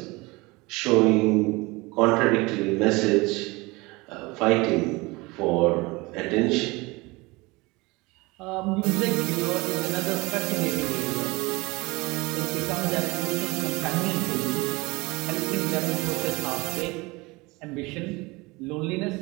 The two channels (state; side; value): quieter; left; 23.9 dB